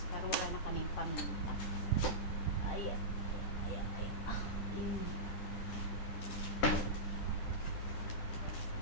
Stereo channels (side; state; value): right; late; 10 ms